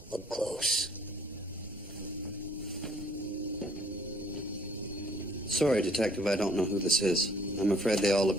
Look close. Sorry, Detective, I don't know who this is. I'm afraid they all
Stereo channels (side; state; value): both; normal; correlation 0.60